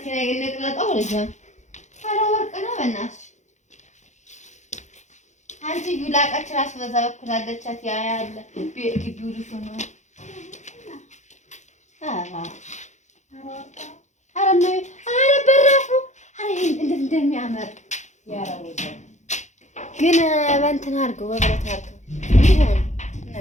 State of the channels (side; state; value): right; late; 0.34 ms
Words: ነቅለጣው ልጅ ኧረ ወርቅ ነው በእናትሽ። አንቺ ዩላቃች ራስ በዛ በኩል አለቻት። ያ ያለ ግቢው ልጅ ነው። ኧረ በራፉ እንዴት እንደሚያምር ግን በእንትን አድርገው በብረት አድርገው ይሆን